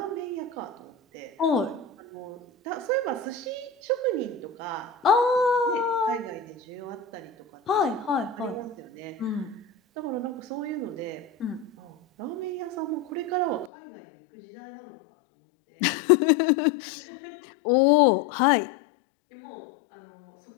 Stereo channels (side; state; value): right; drops out; at 13.7 s